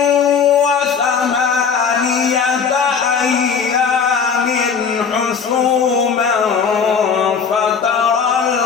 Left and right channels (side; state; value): right; quieter; 6.3 dB